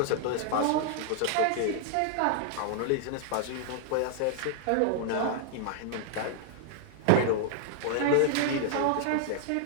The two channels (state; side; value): different; both; correlation -0.01